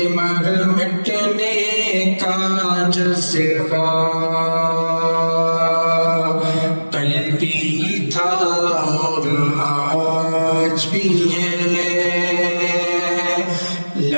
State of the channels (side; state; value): both; inverted; correlation -1.00